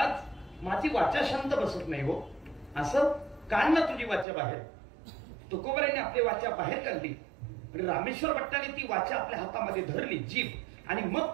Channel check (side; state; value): left; drops out; at 4.2 s